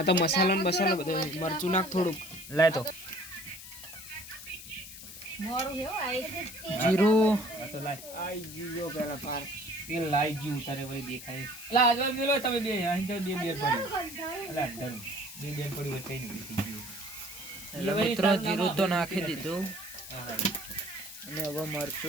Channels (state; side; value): noise; left; hiss, 13 dB below the sound